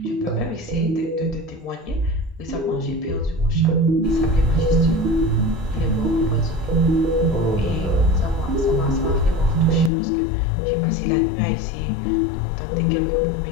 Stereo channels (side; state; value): right; drops out; at 9.9 s